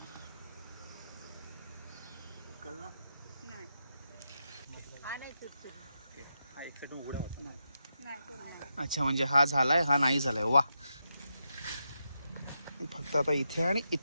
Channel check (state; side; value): inverted; both; correlation -0.85